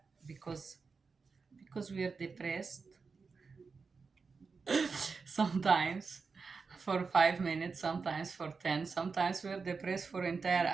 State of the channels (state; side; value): quieter; left; 4.8 dB